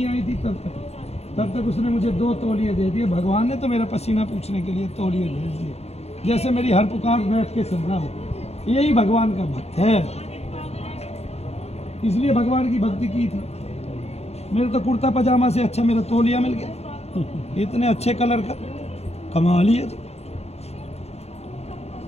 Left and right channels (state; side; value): late; right; 0.30 ms